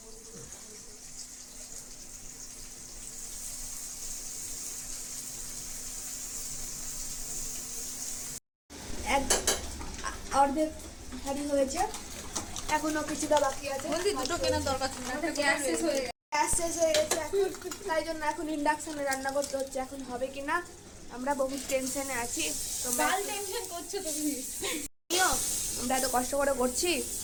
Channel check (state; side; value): identical; both; correlation 1.00